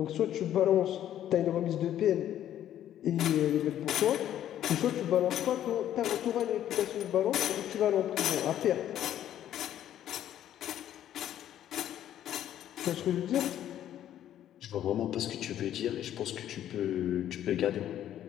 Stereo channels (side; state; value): right; quieter; 11.4 dB